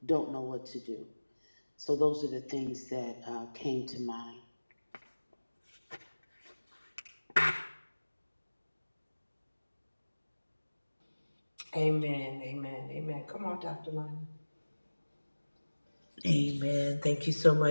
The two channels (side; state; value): both; inverted; correlation -1.00